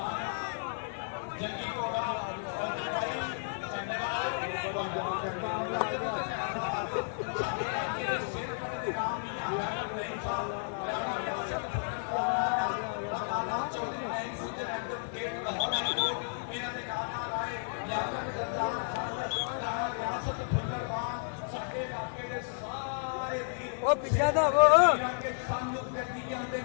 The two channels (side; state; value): right; silent; 56 dB below the other